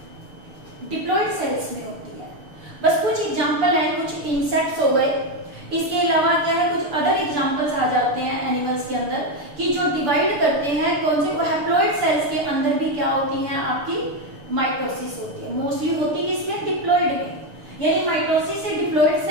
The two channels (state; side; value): late; left; 6.9 ms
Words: डिप्लॉइड सेल्स में होती है। बस कुछ एग्जांपल है, कुछ इंसेक्ट्स हो गए, इसके अलावा क्या है? कुछ अदर एग्जांपल्स आ जाते हैं एनिमल्स के अंदर कि जो डिवाइड करते हैं कौन से? वो हैप्लॉइड सेल्स के अंदर भी क्या होती हैं? आपकी माइटोसिस होती है। मोस्टली होती किसमें? डिप्लॉइड में। यानी माइटोसिस से डिप्लॉइड